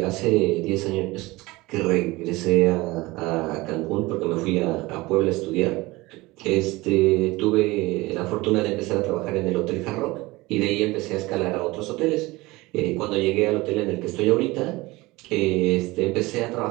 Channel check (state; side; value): quieter; left; 21.2 dB